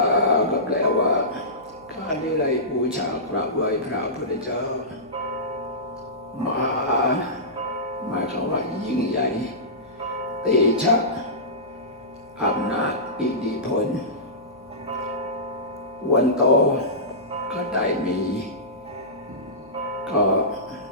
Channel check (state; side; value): noise; left; hum, 29 dB below the sound